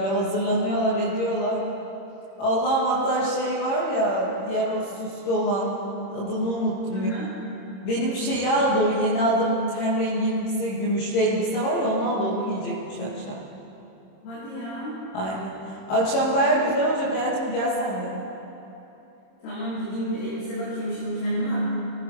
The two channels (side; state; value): right; late; 26 ms